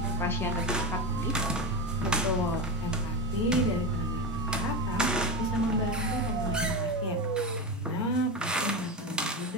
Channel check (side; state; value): both; normal; correlation 0.20